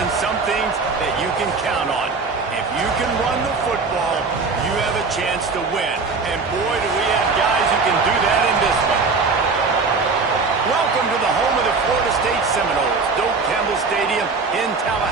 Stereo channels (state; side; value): quieter; left; 4.4 dB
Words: some things that you can count on. If you can run the football, you have a chance to win. And boy, do we have guys who can do that in this one. Welcome to the home of the Florida State Seminoles, Doak Campbell Stadium in